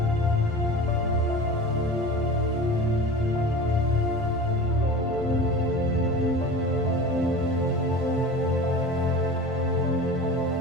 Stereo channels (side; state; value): both; normal; correlation 0.34